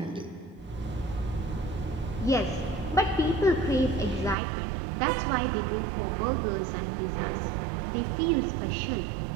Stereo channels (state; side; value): drops out; left; at 4.4 s